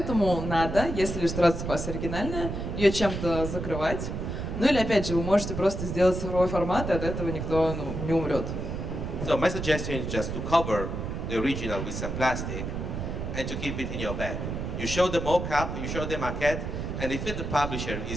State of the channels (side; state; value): right; noise; rumble, 4 dB below the sound